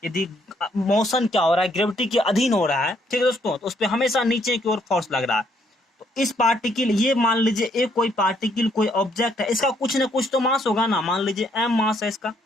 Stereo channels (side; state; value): both; normal; correlation 0.70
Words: यदि मोशन क्या हो रहा है, ग्रेविटी के अधीन हो रहा है, ठीक है दोस्तों, तो उस पर हमेशा नीचे की ओर फोर्स लग रहा है। तो इस पार्टिकल, ये मान लीजिए एक कोई पार्टिकल, कोई ऑब्जेक्ट है, इसका कुछ ना कुछ तो मास होगा ना, मान लीजिए m मास है इसका,